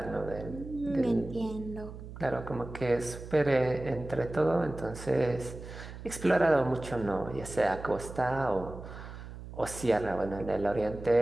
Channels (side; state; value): right; noise; hum, 12 dB below the sound